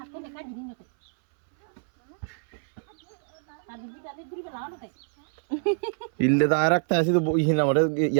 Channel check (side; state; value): left; silent; 61 dB below the other